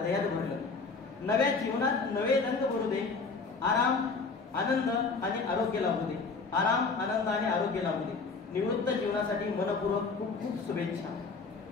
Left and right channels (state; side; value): quieter; right; 4.4 dB